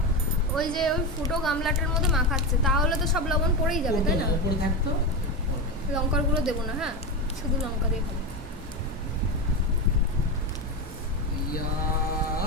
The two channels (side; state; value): both; normal; correlation 0.16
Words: ওই যে ওই ফুটো গামলাটার মধ্যে মাখাচ্ছে, তাহলে তো সব লবণ পড়েই যাবে, তাই না? উপরে থাকতো। লঙ্কার গুঁড়ো দেবো না, হ্যাঁ শুধু লঙ্কা দিয়ে খাবো।